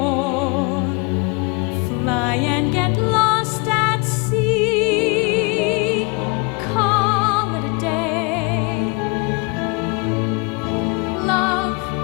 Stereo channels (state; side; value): quieter; right; 30.2 dB